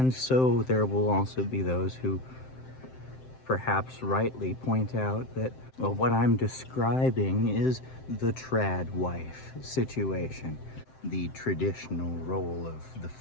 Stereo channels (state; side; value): late; right; 7.7 ms